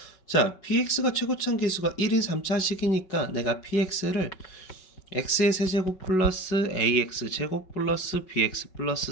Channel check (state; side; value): late; right; 5.3 ms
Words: 자, px가 최고차항 계수가 1인 3차식이니까 내가 px를 x의 세제곱 플러스 ax 제곱 플러스 bx 플러스